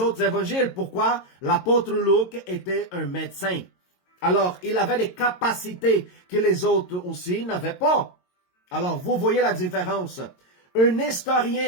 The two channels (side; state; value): right; late; 22 ms